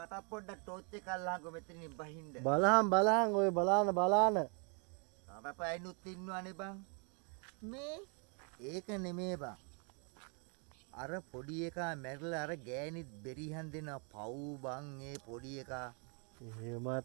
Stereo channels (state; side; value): quieter; left; 36.6 dB